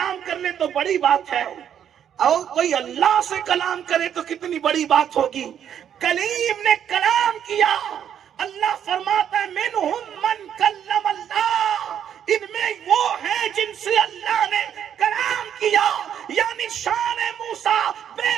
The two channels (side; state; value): left; quieter; 9.3 dB